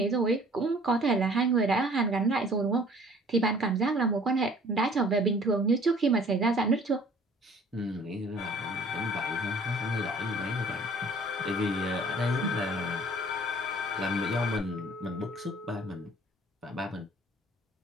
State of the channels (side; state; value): both; normal; correlation 0.52